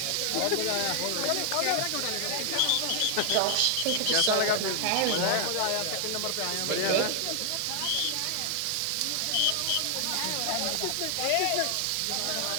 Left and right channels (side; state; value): both; different; correlation 0.00